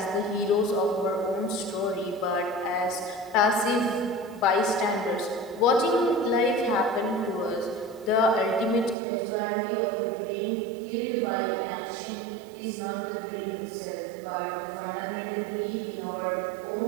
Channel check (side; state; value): left; drops out; at 9.0 s